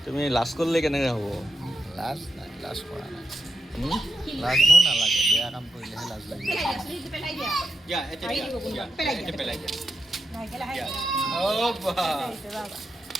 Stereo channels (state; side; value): normal; both; correlation 0.85